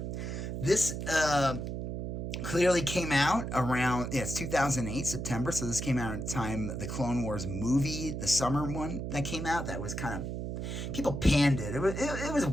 This clearly came out around, it's 2008, September, so this came out at the time the Clone Wars movie, the summer one that came out, that was kind of, people panned it. It was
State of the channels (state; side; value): noise; right; hum, 4 dB below the sound